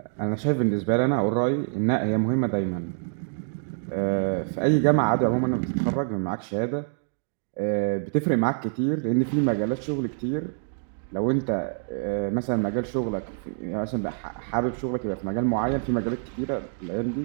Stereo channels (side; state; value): left; silent; digital silence